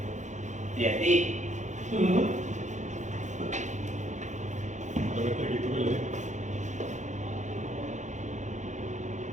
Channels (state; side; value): late; left; 0.35 ms